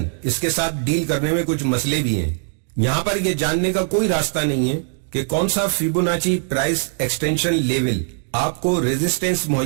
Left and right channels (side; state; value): left; silent; 63 dB below the other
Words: اس کے ساتھ ڈیل کرنے میں کچھ مسئلے بھی ہیں۔ یہاں پر یہ جاننے کا کوئی راستہ نہیں ہے کہ کون سا فیبوناچی پرائس ایکسٹینشن لیول آپ کو ریزسٹنس